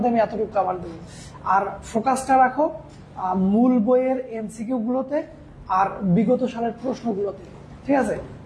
আমি এতটুকু কাভার দেবো। আর ফোকাসটা রাখো মূল বইয়ের এমসিকিউ গুলোতে আর বিগত সালের প্রশ্নগুলোতে, ঠিক আছে?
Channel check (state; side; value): identical; both; correlation 1.00